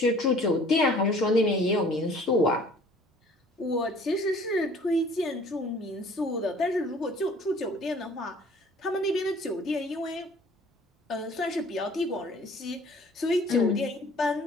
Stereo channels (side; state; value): both; normal; correlation 0.52